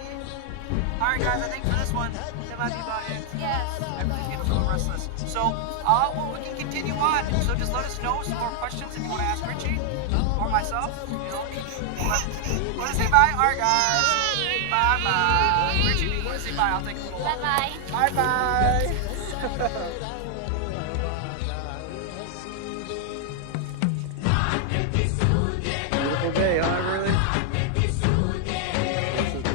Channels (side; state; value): both; different; correlation 0.00